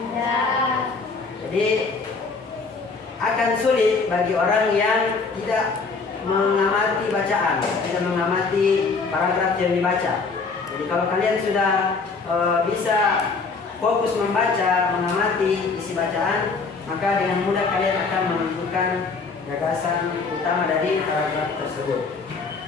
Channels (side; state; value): right; quieter; 4.4 dB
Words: Jadi akan sulit bagi orang yang tidak mengamati bacaan, tidak mengamati paragraf yang dibaca. Jadi kalau kalian sudah bisa fokus membaca, mengamati isi bacaan, maka dengan mudah kalian akan menentukan gagasan utama dari paragraf tersebut.